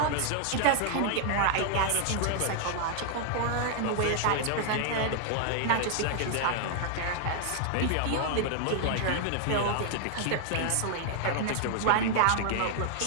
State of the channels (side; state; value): both; different; correlation 0.00